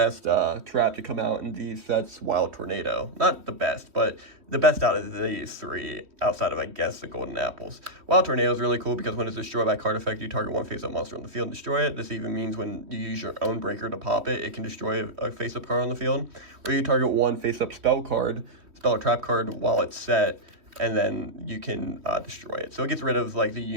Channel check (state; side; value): late; left; 3.1 ms